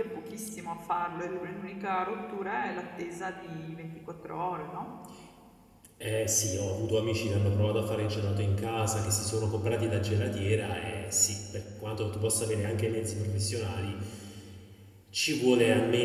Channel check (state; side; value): identical; both; correlation 1.00